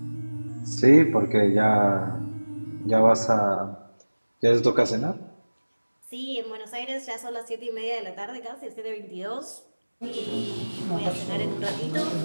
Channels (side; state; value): both; inverted; correlation -1.00